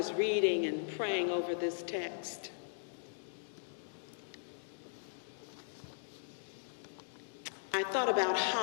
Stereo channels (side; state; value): right; silent; digital silence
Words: reading and praying over this text, I thought about